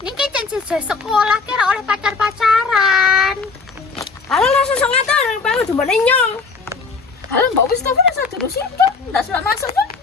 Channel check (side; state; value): right; quieter; 4.6 dB